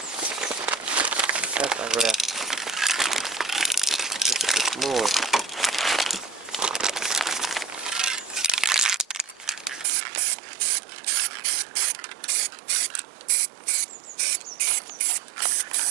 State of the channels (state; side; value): drops out; left; at 9.9 s